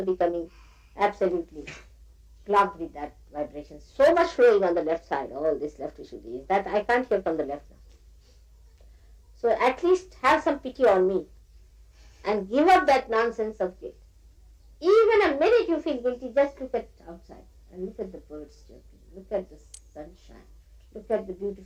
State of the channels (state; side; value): identical; both; correlation 1.00